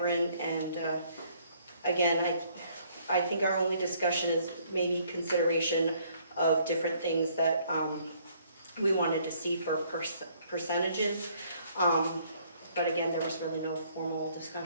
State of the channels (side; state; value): both; inverted; correlation -0.64